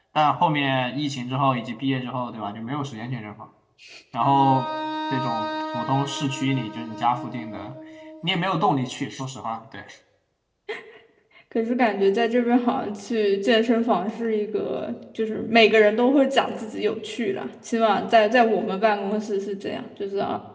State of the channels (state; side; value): identical; both; correlation 1.00